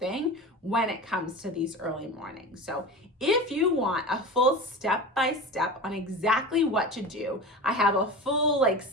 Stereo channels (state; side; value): normal; both; correlation 0.30